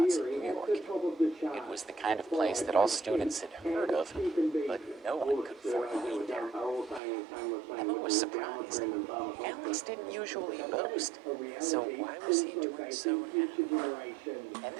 in New York. It was the kind of place that all students had heard of, but no one could afford to eat there. Emma was surprised. Alex didn't usually boast, so why was he doing so now? And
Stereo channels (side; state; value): left; drops out; at 7.0 s